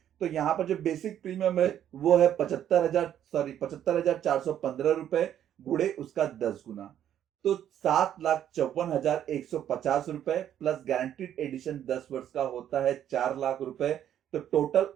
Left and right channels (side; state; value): left; quieter; 10.5 dB